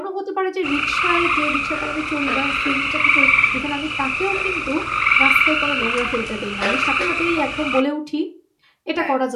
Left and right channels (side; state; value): both; identical; correlation 1.00